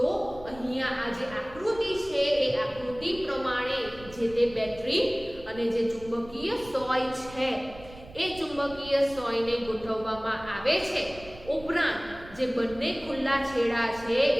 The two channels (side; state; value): right; noise; rumble, 19 dB below the sound